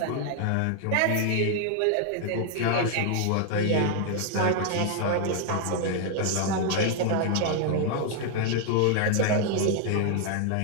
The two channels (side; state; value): both; different; correlation 0.00